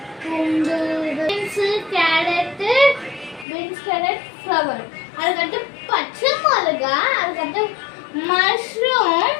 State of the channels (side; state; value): right; drops out; at 3.5 s